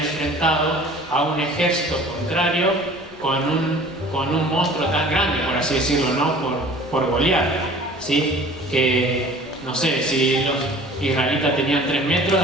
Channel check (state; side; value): normal; both; correlation 0.46